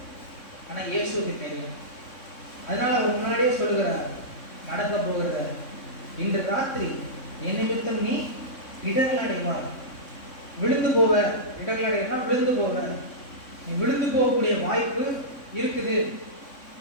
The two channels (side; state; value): right; late; 3.6 ms